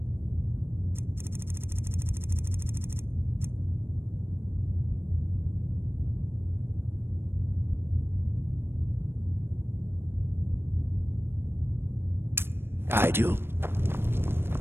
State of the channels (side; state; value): left; late; 0.11 ms